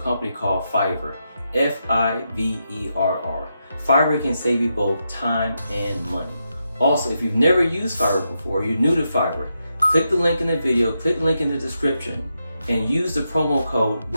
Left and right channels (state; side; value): inverted; both; correlation -0.84